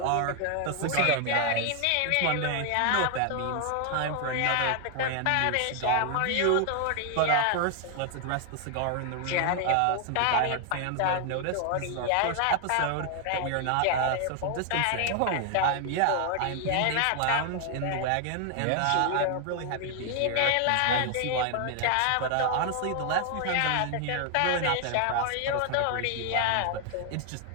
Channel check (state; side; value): different; both; correlation 0.00